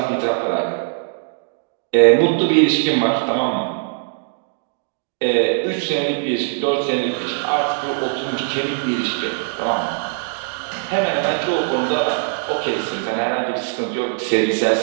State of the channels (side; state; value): left; silent; digital silence